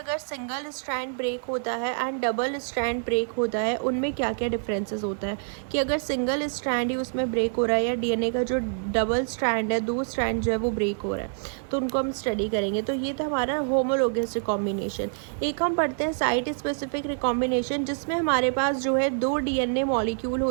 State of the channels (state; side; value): silent; left; digital silence